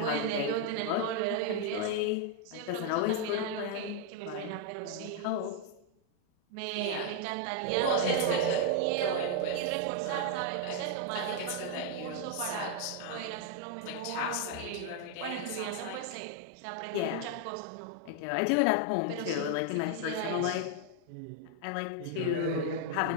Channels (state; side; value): different; both; correlation 0.00